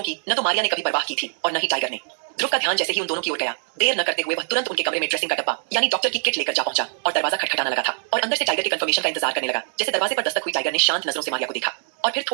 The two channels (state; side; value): silent; left; 63 dB below the other